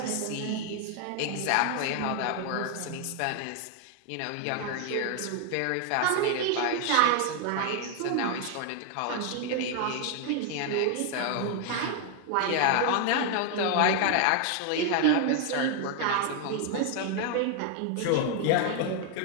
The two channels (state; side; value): different; both; correlation 0.00